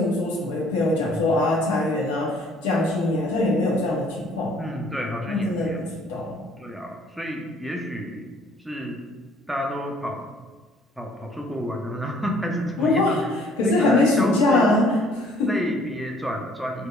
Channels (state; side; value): normal; both; correlation 0.59